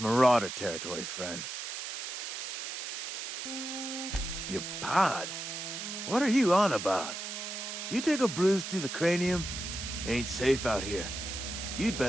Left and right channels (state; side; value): noise; right; hiss, 6 dB below the sound